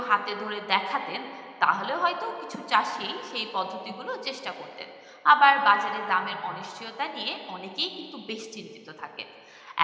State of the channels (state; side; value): identical; both; correlation 1.00